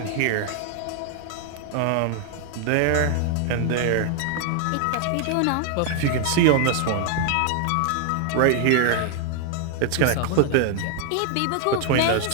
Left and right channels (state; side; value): different; both; correlation 0.00